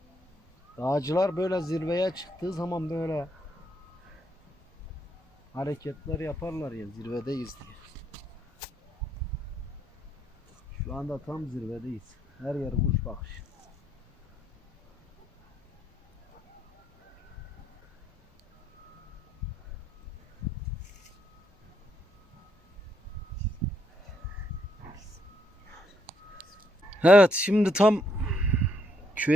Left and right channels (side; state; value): both; normal; correlation 0.73